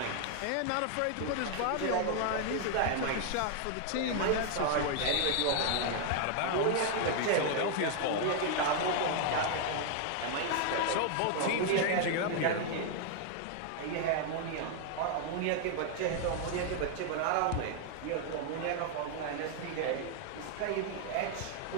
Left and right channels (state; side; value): different; both; correlation 0.00